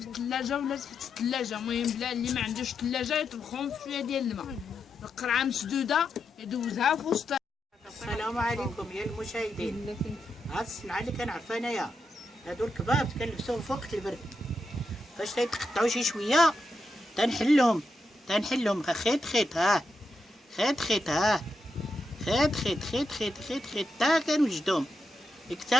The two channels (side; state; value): both; normal; correlation 0.85